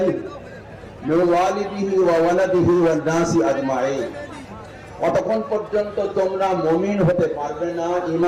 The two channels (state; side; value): identical; both; correlation 1.00